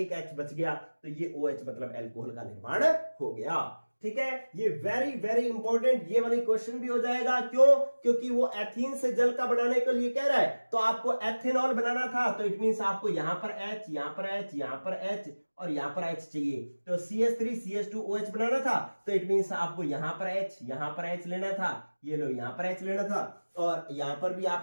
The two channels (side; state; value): both; inverted; correlation -1.00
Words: H बच गया, तो ये OH मतलब एल्कोहल का निर्माण हो गया। ठीक है, ये वेरी वेरी इंपॉर्टेंट, ये वाली क्वेश्चन भी हो जाएगा। क्यों, क्योंकि वो एथीन से जल का बनाने के लिए कह रहा है, तो आपको एथेनॉल बनाना था, तो इट मींस आपको यहां पर H, यहां पर H, यहां पर H और यहां पर H चाहिए। तो CH3 CH2OH बनाना था, तो इट मींस आपको यहां पर H, यहां पर H लेना था, ये लो यहां पर H लेना था, और यहां पर भी